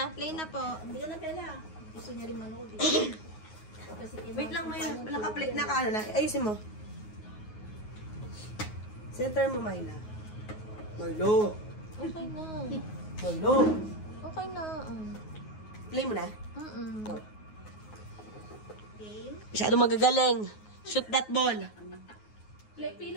Play na po. Hindi ka na Bella. Gusto niya rin manood eh. Kasi Wait lang, may nakaplik na ka ano na. Ayusin mo. Center mo, Myla. Marlo! Okay na. Marlo! Okay na. Play mo na. Mm-mm. game. Masyado magagaling. Shoot that ball. Play,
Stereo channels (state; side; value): late; right; 9.5 ms